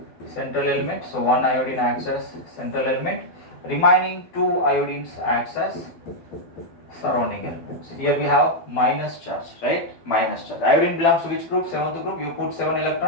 central element. So one iodine acts as central element, remaining 2 iodines acts as surrounding elements. Here we have minus charge, right? Minus charge. Iodine belongs to which group? 7th group. You put 7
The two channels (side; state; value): right; late; 12 ms